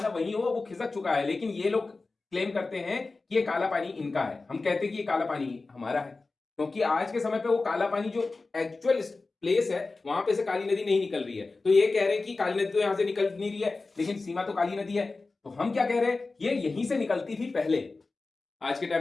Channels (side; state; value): right; quieter; 3.7 dB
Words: वही हो, वो खिसक चुका है, लेकिन ये लोग क्लेम करते हैं कि ये काला पानी इनका है। हम कहते हैं कि ये काला पानी हमारा है, क्योंकि आज के समय पे वो काला पानी जो एक्चुअल प्लेस है वहां पे से काली नदी नहीं निकल रही है। तो ये कह रहे हैं कि काली नदी तो यहां से निकल नहीं रही है, लेकिन सीमा तो काली नदी है। तो हम क्या कह रहे हैं, ये यहीं से निकलती थी पहले, आज के